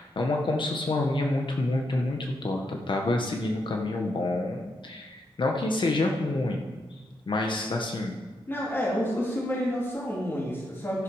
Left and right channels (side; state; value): both; normal; correlation 0.81